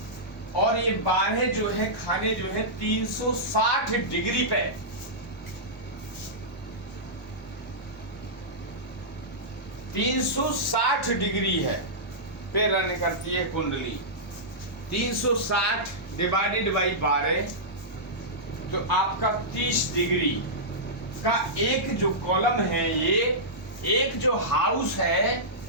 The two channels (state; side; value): normal; both; correlation -0.14